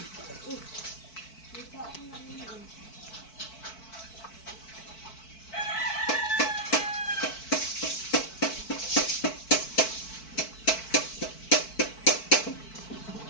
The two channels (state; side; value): late; right; 4.5 ms